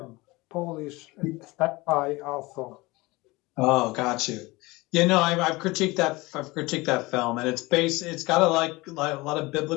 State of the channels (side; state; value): right; quieter; 22.2 dB